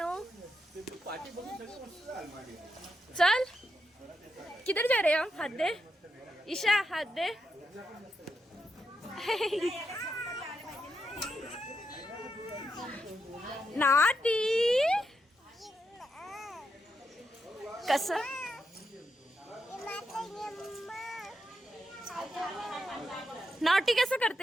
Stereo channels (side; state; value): both; normal; correlation 0.84